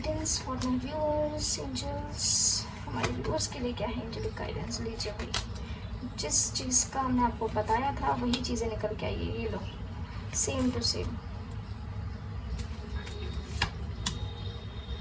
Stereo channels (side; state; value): both; identical; correlation 1.00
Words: for my viewers. Angels हमारे व्यूअर्स के लिए क्या है एंजेलिक गाइडेंस, लीजिए भाई। जिस चीज़ का हमने आपको बताया था वही चीज़ें निकल के आई है, ये लो, सेम टू सेम,